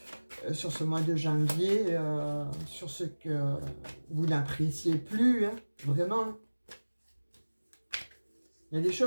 mois de janvier. Sur ce que vous n'appréciez plus, hein. Vraiment. Il y a des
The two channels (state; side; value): inverted; both; correlation -1.00